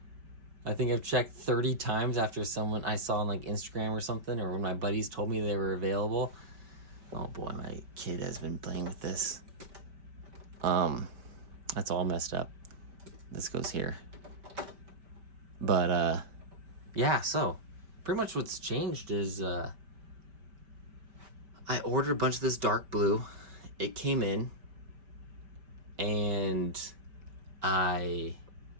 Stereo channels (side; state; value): left; late; 5.1 ms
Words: I think I've checked 30 times after someone I saw on like Instagram or something, or when my buddies told me they were available. Oh boy, my kid has been playing with this. That's all messed up. This goes here. But yeah, so pretty much what's changed is I ordered a bunch of this dark blue. It came in, and I